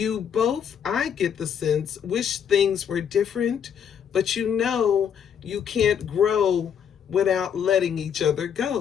both, I get the sense, wish things were different, but you know you can't grow without letting each other go,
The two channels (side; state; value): right; quieter; 8.1 dB